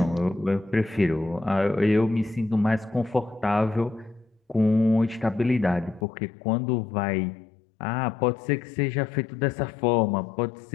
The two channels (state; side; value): drops out; right; at 6.1 s